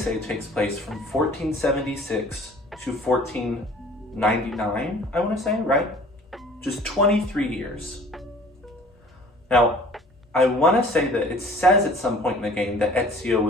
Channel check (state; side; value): normal; both; correlation 0.50